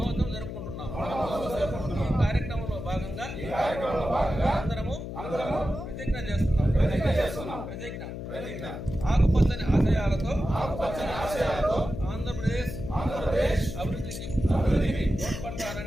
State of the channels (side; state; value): left; noise; hum, 8 dB below the sound